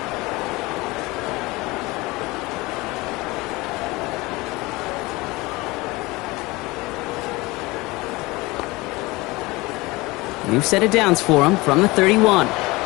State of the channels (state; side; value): quieter; right; 22.2 dB